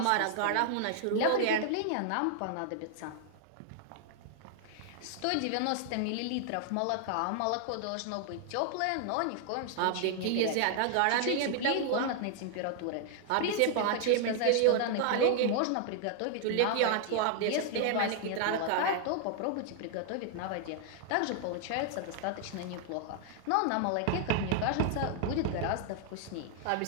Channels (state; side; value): different; both; correlation 0.00